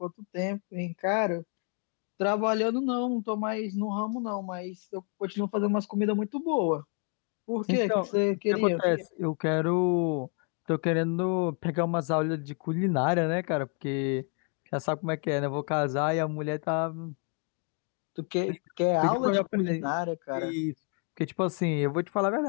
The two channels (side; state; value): right; quieter; 39.2 dB